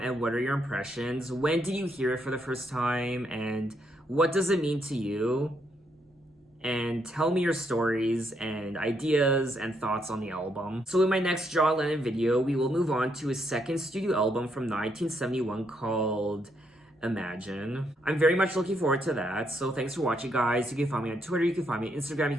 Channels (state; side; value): normal; both; correlation 0.76